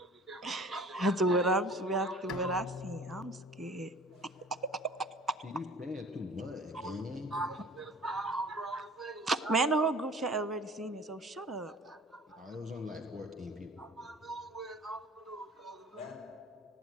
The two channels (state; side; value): normal; both; correlation 0.46